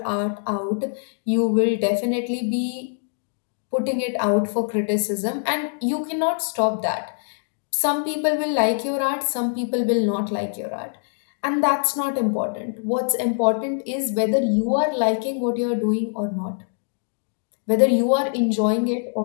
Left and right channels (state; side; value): silent; right; digital silence